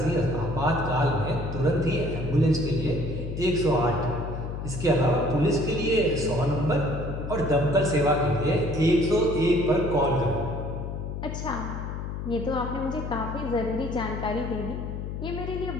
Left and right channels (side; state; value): left; noise; hum, 5 dB below the sound